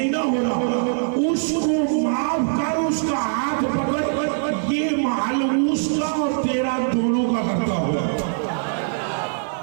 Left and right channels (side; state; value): left; silent; 64 dB below the other